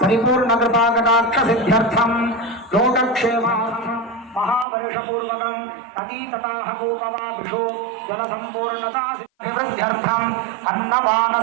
परिपूर्ण कृपा कटाक्ष सिद्ध्यर्थं लोकक्षेमार्थं महावर्ष पूर्वकं नदी तटाह कूपवापिषु जल संपूर्णता अभिवृद्ध्यर्थम अन्नपान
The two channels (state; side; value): drops out; left; at 4.7 s